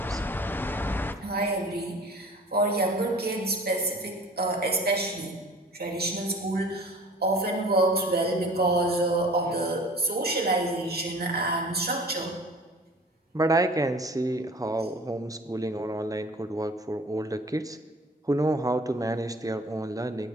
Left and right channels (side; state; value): both; normal; correlation 0.45